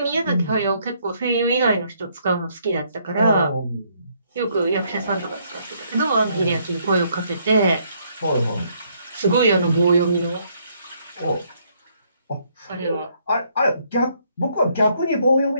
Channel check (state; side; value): inverted; both; correlation -0.70